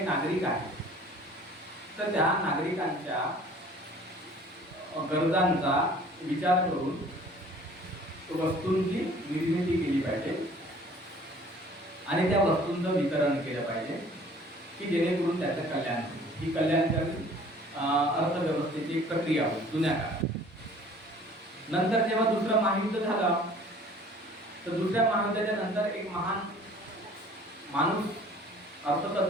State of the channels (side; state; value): both; normal; correlation 0.51